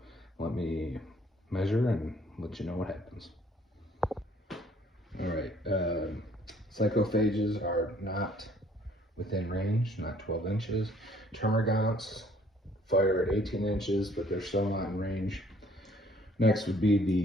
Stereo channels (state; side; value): normal; both; correlation 0.60